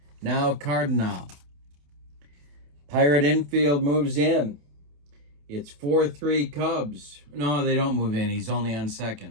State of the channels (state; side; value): late; left; 28 ms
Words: Now Cardinal. Pirate infield moves in. It's 4-3 Cubs. No, they don't move in. He's only on